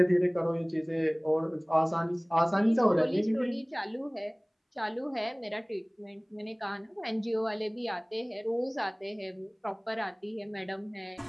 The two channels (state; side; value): identical; both; correlation 1.00